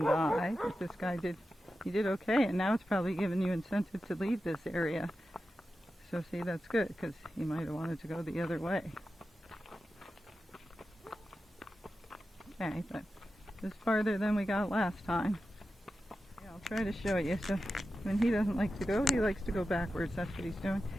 But this guy did okay, and now it's probably giving you incentive to leave this area. So see, that's good, because he might have wanted to go the other way. Okay, but it's farther than we got last time. Yeah, I'll try to show you. So when he doesn't like to go, he likes to go backwards. That's what he's doing.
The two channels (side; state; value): both; normal; correlation 0.92